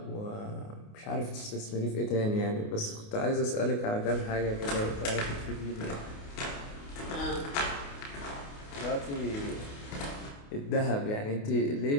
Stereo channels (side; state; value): right; late; 28 ms